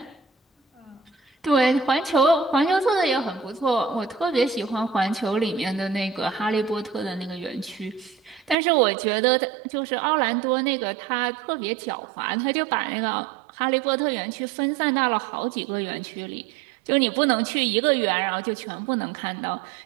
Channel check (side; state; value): left; drops out; at 8.6 s